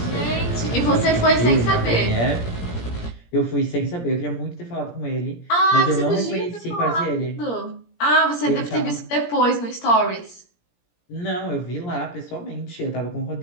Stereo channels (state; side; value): late; right; 17 ms